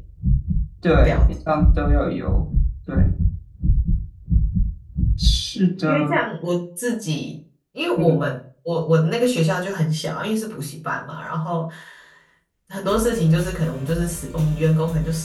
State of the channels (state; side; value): identical; both; correlation 1.00